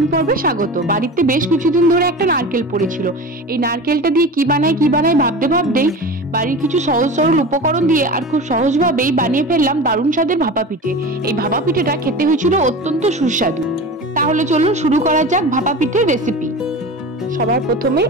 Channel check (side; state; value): both; normal; correlation 0.32